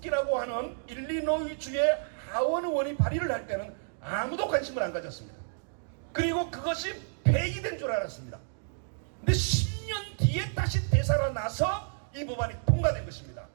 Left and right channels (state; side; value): silent; left; digital silence